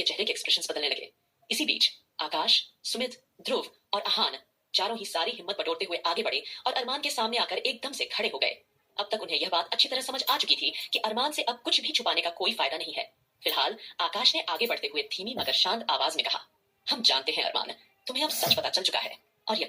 चेहरे के एक्सप्रेशंस बदलने लगे। इसी बीच आकाश, सुमित, ध्रुव और आहान चारों ही सारी हिम्मत बटोरते हुए आगे बढ़े और अरमान के सामने आकर एकदम से खड़े हो गए। अब तक उन्हें यह बात अच्छी तरह समझ आ चुकी थी कि अरमान से अब कुछ भी छुपाने का कोई फायदा नहीं है। फिलहाल आकाश ने आगे बढ़ते हुए धीमी मगर शांत आवाज में कहा, हम जानते हैं अरमान, तुम्हें अब सच पता चल चुका है और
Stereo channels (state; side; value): identical; both; correlation 1.00